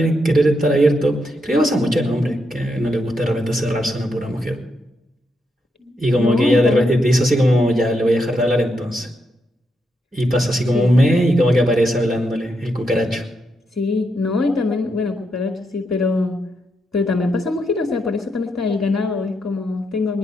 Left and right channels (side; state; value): both; normal; correlation 0.81